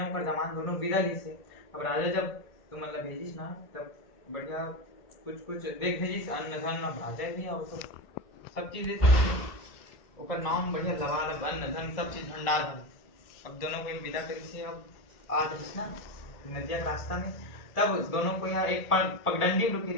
पर जमान दोनों विदा ली से। अब राजा जब तुम मतलब भेजिस ना तब बढ़िया कुछ देख भेजिस अन्न धन राजा भी और तो सब चीज दे सकते ओकर नाम बढ़िया लवालब अन्न धन सब चीज भंडार है। अब दोनों को विदा करी से अब आ रही ना नदिया के रास्ता में। तब दोनों को यहाँ एक पगडंडी में रुकी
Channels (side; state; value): right; late; 1.6 ms